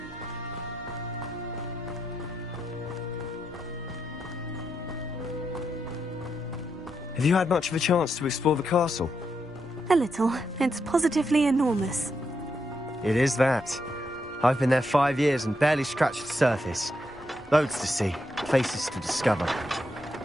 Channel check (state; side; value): normal; both; correlation 0.82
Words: Have you had much of a chance to explore the castle? A little. It's positively enormous. It is that. I've been there 5 years and barely scratched the surface. Loads to see, places to discover.